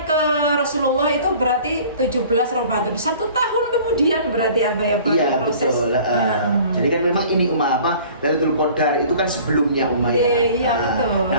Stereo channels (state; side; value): inverted; both; correlation -0.48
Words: ke Rasulullah itu berarti 17 Ramadan. 1 tahun kemudian berarti proses. Betul. Jadi kan memang ini Lailatul Qadar itu kan sebelumnya ya. Iya, betul.